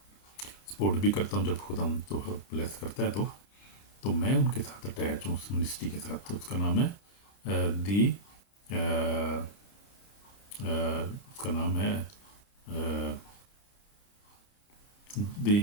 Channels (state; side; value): late; right; 30 ms